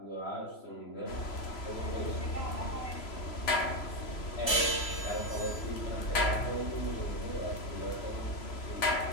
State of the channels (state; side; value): late; right; 3.0 ms